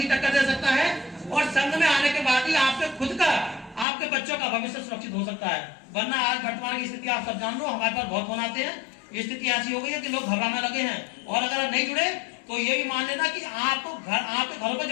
टक्कर दे सकता है, और संघ में आने के बाद ही आपके खुद का, आपके बच्चों का भविष्य सुरक्षित हो सकता है। वरना आज वर्तमान की स्थिति आप सब जान लो, हमारे पास बहुत फोन आते हैं, स्थिति ऐसी हो गई है कि लोग घबराने लगे हैं, और अगर नहीं जुड़े तो ये भी मान लेना कि आपको आपके घरों पर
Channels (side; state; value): right; drops out; at 3.9 s